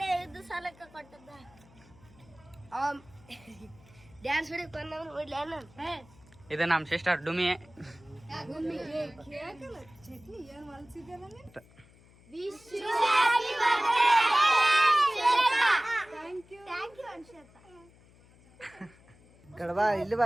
ಇದು ಸಾಲಕ್ಕೆ ಕೊಟ್ಟದ್ದ ಡ್ಯಾನ್ಸ್ ಹೊಡಿಕ್ ಬಂದವನು ಇದು ನಮ್ಮ ಸಿಸ್ಟರ್ ಡುಮಿ ಕಡಬಾ ಇಲ್ಲಿ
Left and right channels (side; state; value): left; noise; hum, 26 dB below the sound